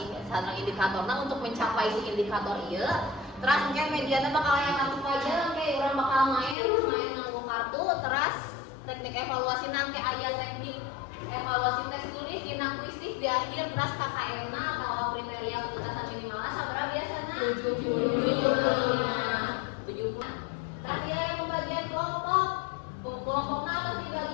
sareng indikatorna untuk mencapai si indikator ieu. Teras engke mediana bakal aya kartu pajak, engke urang bakal main nganggo kartu. Teras teknik evaluasi nangke aya teknik evaluasi tes tulis dina kuisis di akhir. Teras KKM-na atau kriteria ketuntasan minimalna sabaraha biasana 70. Tadi yang pembagian kelompokna atau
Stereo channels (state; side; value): drops out; right; at 6.6 s